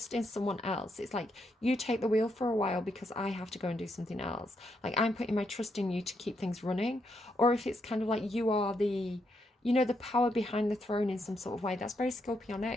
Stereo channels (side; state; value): both; normal; correlation 0.79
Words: in someone else. It's like, you take the wheel for a while because I have to go and do something else. Like, I'm putting my trust in you to keep things running. Or if it's kind of like you are the, you know, the power behind the throne in some sort of way. That's very